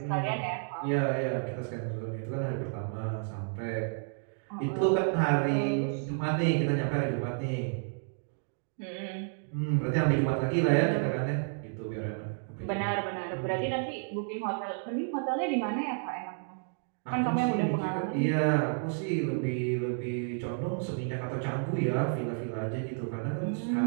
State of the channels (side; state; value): left; silent; 57 dB below the other